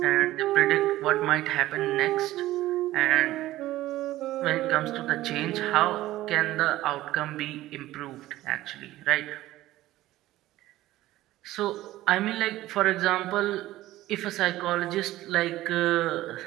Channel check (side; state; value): left; quieter; 15.8 dB